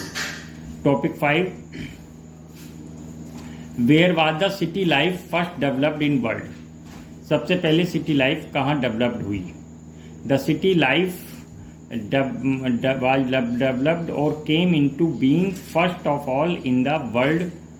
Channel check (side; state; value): both; identical; correlation 1.00